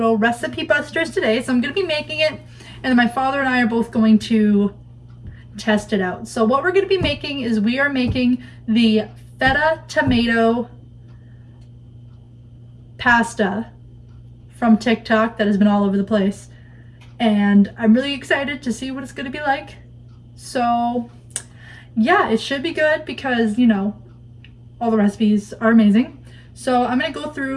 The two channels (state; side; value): identical; both; correlation 1.00